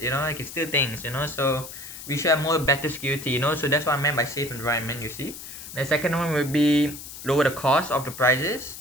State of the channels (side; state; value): left; noise; hiss, 12 dB below the sound